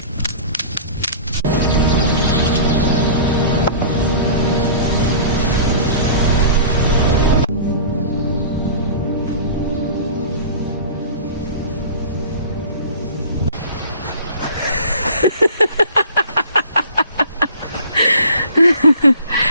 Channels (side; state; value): both; inverted; correlation -0.42